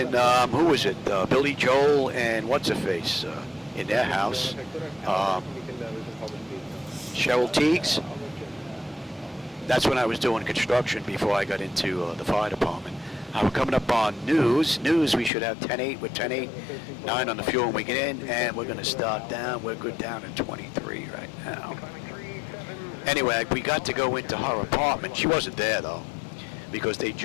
who was it? Billy Joel and what's-her-face in their house. Cheryl Teagues. That's when I was doing construction before I got into the fire department. We're coming up on news. We should have 10-8 with 10-8, 9 on the fuel when we get in, and we're going to start down. We're good down at 23 right now. Anyway, we got to go into her apartment. She wasn't there, though, because they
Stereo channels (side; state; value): right; drops out; at 15.3 s